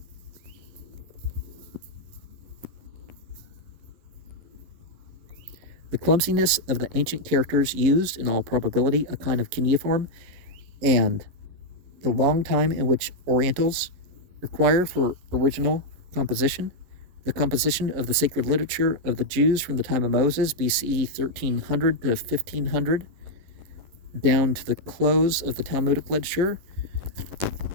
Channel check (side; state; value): left; late; 11 ms